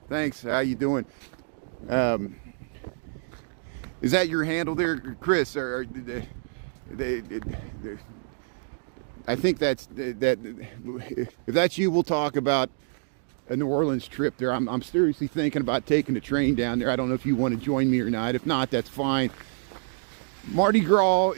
Thanks. How you doing? Is that your handle there, Chris? Or I think that. If that's you, we'll talk about a New Orleans trip there. I'm seriously thinking about taking the train down there. I don't know if you want to join me or not. If not, that's fine. Mardi Gras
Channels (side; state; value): left; silent; digital silence